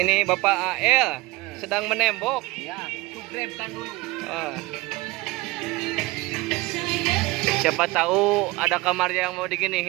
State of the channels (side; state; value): left; quieter; 21.3 dB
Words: Bapak AL sedang menembok. Ya, subscribe kan dulu. Siapa tahu ada kamar yang mau